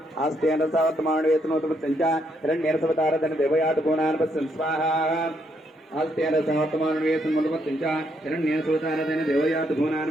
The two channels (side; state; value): both; normal; correlation 0.75